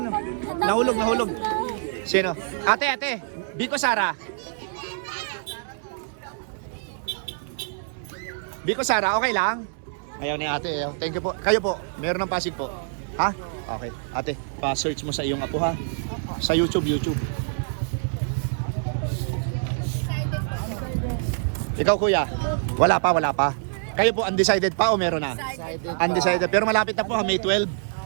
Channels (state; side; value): silent; left; 61 dB below the other